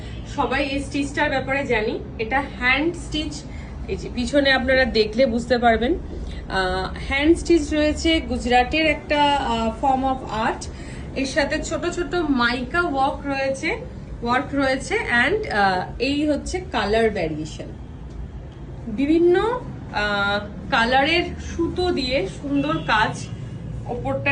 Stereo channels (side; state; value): both; identical; correlation 1.00